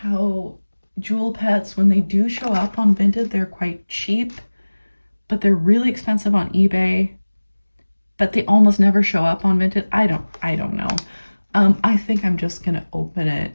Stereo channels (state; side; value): inverted; both; correlation -1.00